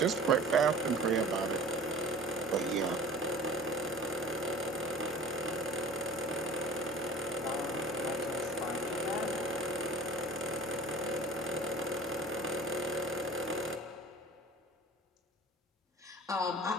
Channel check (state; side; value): normal; both; correlation 0.44